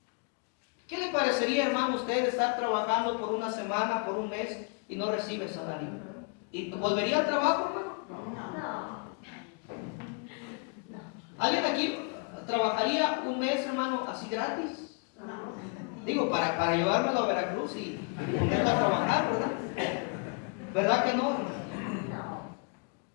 ¿Qué le parecería, hermano, usted estar trabajando por una semana, por un mes y no recibe salario? ¿Y volvería al trabajo, hermano? No. ¿Alguien aquí trabajaría un mes, hermano, así gratis? Digo, para llevármelo a Veracruz y ponerlo a trabajar, ¿verdad? ¿Verdad que no, hermano?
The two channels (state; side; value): quieter; right; 36.2 dB